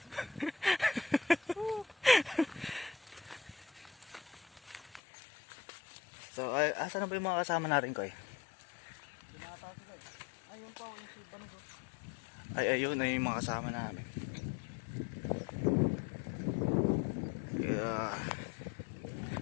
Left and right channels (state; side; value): drops out; right; at 5.0 s